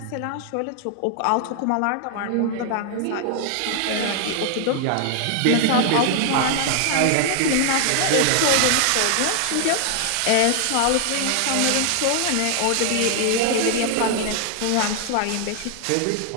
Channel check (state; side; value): different; both; correlation 0.00